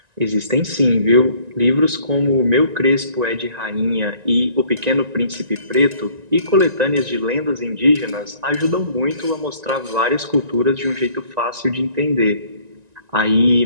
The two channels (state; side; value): late; left; 1.9 ms